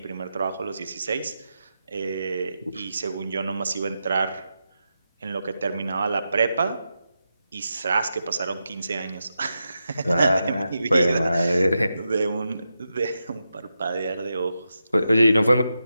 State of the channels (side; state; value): both; inverted; correlation -0.88